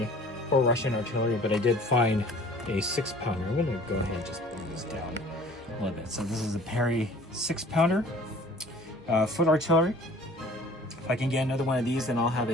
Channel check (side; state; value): both; normal; correlation 0.49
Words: for Russian artillery, but I did find a 6-pounder. I'm gonna go ahead and just bring this down a little bit. So this is a Perry 6-pounder foot artillery. If I can get another one of these, then I'll have